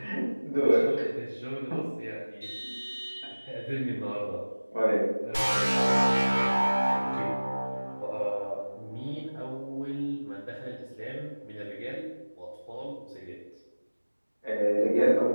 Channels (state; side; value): inverted; both; correlation -1.00